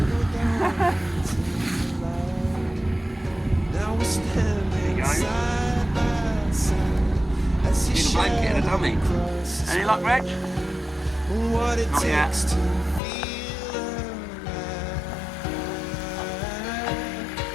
There you go. Need a blanket and a dummy. Any luck, Reg? Not yet.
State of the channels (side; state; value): right; drops out; at 13.0 s